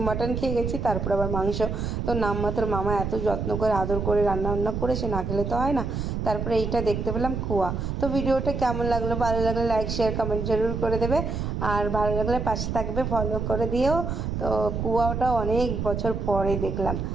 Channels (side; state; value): right; noise; rumble, 3 dB below the sound